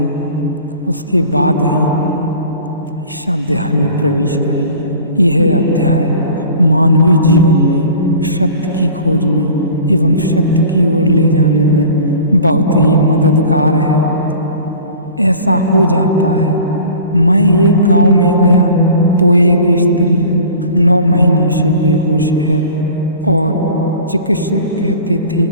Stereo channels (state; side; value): inverted; both; correlation -0.43